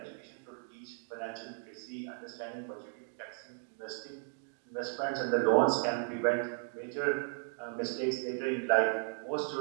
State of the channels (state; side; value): silent; left; 54 dB below the other